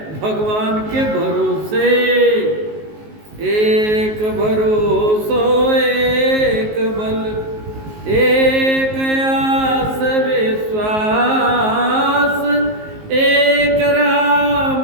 भगवान के भरोसे। एक भरोसो एक बल, एक आस विश्वास, एक राम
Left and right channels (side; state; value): left; late; 19 ms